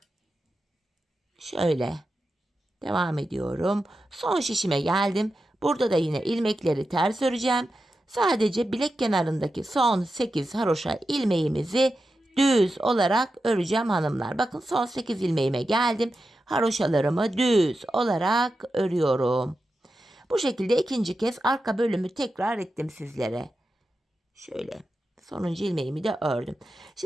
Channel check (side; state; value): both; normal; correlation 0.90